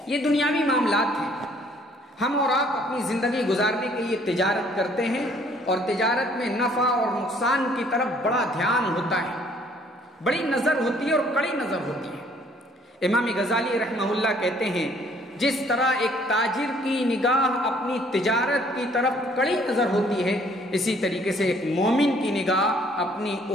یہ دنیاوی معاملات ہیں، ہم اور آپ اپنی زندگی گزارنے کے لیے تجارت کرتے ہیں اور تجارت میں نفع اور نقصان کی طرف بڑا دھیان ہوتا ہے، بڑی نظر ہوتی ہے اور کڑی نظر ہوتی ہے۔ امام غزالی رحمہ اللہ کہتے ہیں جس طرح ایک تاجر کی نگاہ اپنی تجارت کی طرف کڑی نظر ہوتی ہے، اسی طریقے سے ایک مومن کی نگاہ اپنی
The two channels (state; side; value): normal; both; correlation 0.60